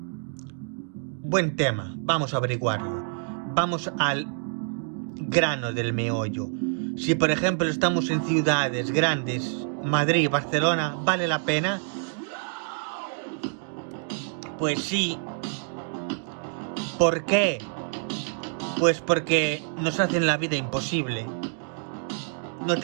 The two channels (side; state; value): left; silent; 56 dB below the other